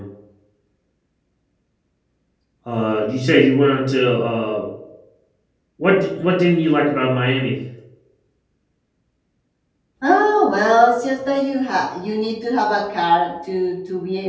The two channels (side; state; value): both; identical; correlation 1.00